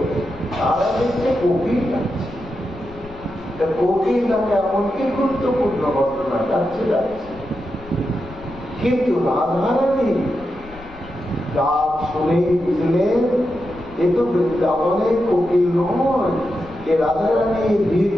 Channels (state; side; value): noise; left; rumble, 20 dB below the sound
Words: তারা দেখছে কোকিল ডাকছে। কোকিল ডাকে এমন কি গুরুত্বপূর্ণ ঘটনা, ডাকছে ডাকছে। কিন্তু রাধারানী ডাক শুনেই বুঝলেন এ তো বৃন্দাবনের কোকিল নয়, এ রাধারানী বীর